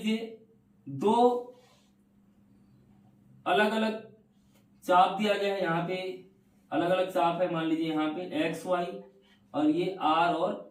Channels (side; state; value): both; identical; correlation 1.00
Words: दो अलग अलग चाप दिया गया है, यहाँ पे अलग अलग चाप है, मान लीजिए यहाँ पे एक्स वाई और ये आर